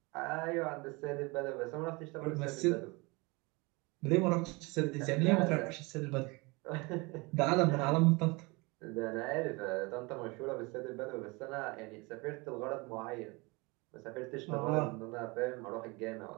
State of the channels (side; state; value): left; quieter; 26.4 dB